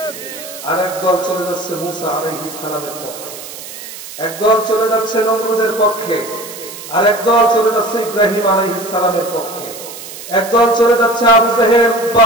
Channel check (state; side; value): noise; right; hiss, 13 dB below the sound